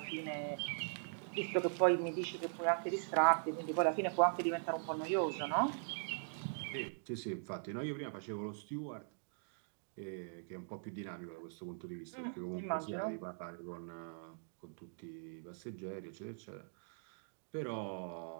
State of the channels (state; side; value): silent; left; digital silence